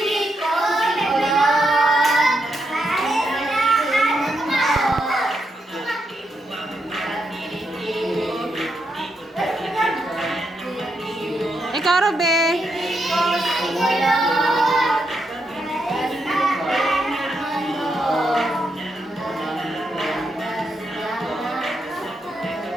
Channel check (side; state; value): both; normal; correlation 0.81